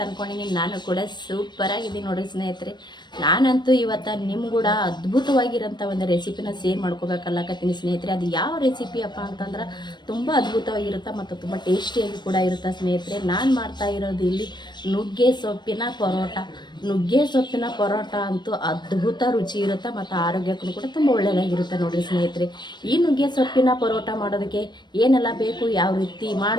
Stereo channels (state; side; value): late; right; 0.22 ms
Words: ಅಂದ್ಕೊಂಡಿನಿ. ನಾನು ಕೂಡ ಸೂಪರ್ ಆಗಿದ್ದೀನಿ ನೋಡಿ ಸ್ನೇಹಿತರೆ. ನಾನಂತೂ ಇವತ್ತು ನಿಮ್ಮ ಕೂಡ ಅದ್ಭುತವಾಗಿರೋಂಥ ಒಂದು ರೆಸಿಪಿನ ಶೇರ್ ಮಾಡ್ಕೋಬೇಕಲ್ಲಕತ್ತೀನಿ ಸ್ನೇಹಿತರೆ. ಅದು ಯಾವ ರೆಸಿಪಿ ಅಪ್ಪ ಅಂತಂದ್ರೆ ತುಂಬ ಅದ್ಭುತವಾಗಿರುತ್ತೆ ಮತ್ತು ತುಂಬ ಟೇಸ್ಟಿಯಾಗಿ ಕೂಡ ಇರುತ್ತೆ ಸ್ನೇಹಿತರೆ. ನಾನು ಮಾಡ್ತಾ ಇರೋದು ಇಲ್ಲಿ ನುಗ್ಗೆ ಸೊಪ್ಪಿನ ಪರೋಟ. ನುಗ್ಗೆ ಸೊಪ್ಪಿನ ಪರೋಟ ಅಂತೂ ಅದ್ಭುತ ರುಚಿ ಇರುತ್ತೆ ಮತ್ತು ಆರೋಗ್ಯಕ್ಕೂ ಕೂಡ ತುಂಬ ಒಳ್ಳೆಯದಾಗಿರುತ್ತೆ ನೋಡಿರಿ ಸ್ನೇಹಿತರೆ. ಈ ನುಗ್ಗೆ ಸೊಪ್ಪಿನ ಪರೋಟ ಮಾಡೋದಕ್ಕೆ ಏನೆಲ್ಲ ಬೇಕು, ಯಾವ ರೀತಿ